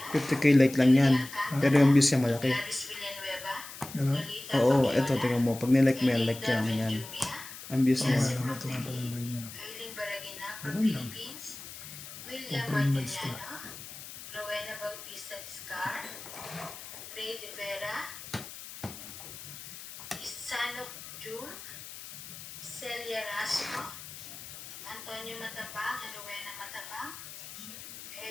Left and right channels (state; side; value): noise; left; hiss, 13 dB below the sound